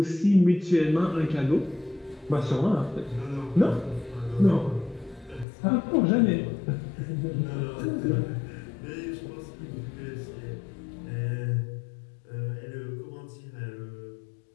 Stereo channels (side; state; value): right; drops out; at 5.5 s